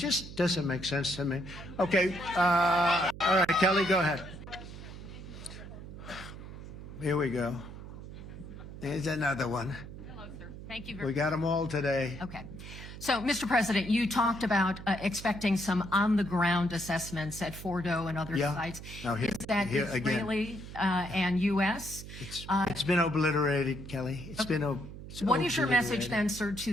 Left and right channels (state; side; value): noise; right; hum, 12 dB below the sound